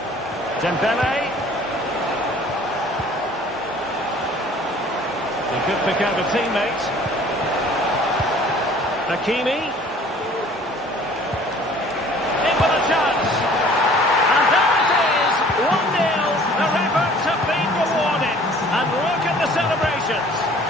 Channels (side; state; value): both; normal; correlation 0.51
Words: Dembele. He could pick out a teammate. Hakimi. In with a chance. And there it is. 1-0. Their efforts have been rewarded. And look at the celebrations.